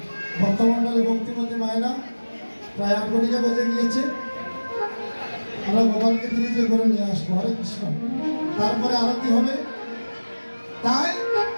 ভক্তমণ্ডলী ভক্তিমতী মায়েরা প্রায় 8 ঘটিকা বেজে গিয়েছে। আমরা গোপালকে তিরিজে করে নিয়ে আসবো। হরে কৃষ্ণ। তারপরে আরতি হবে। তাই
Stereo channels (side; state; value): both; inverted; correlation -1.00